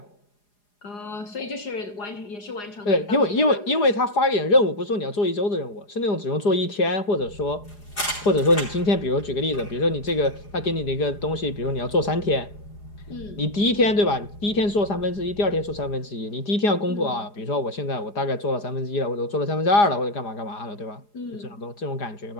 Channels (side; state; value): right; late; 4.9 ms